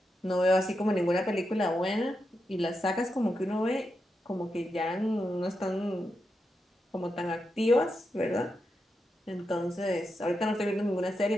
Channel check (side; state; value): both; normal; correlation 0.86